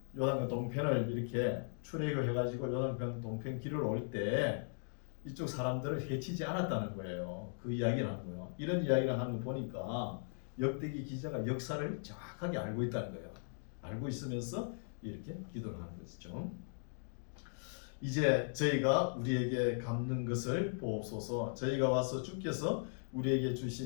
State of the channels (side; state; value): right; silent; digital silence